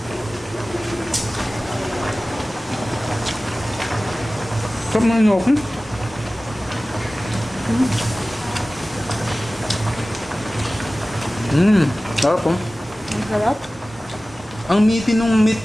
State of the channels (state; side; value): normal; both; correlation 0.97